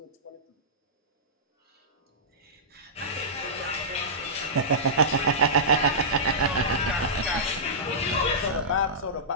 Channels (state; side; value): normal; both; correlation -0.16